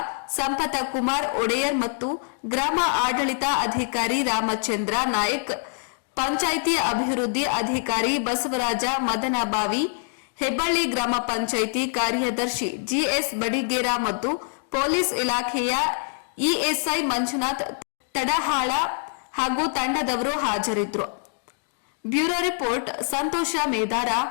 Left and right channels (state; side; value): silent; right; 62 dB below the other